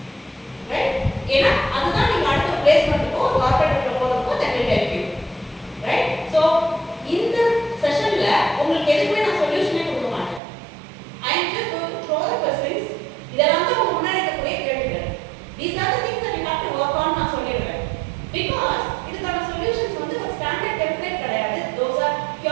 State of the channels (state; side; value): drops out; left; at 10.4 s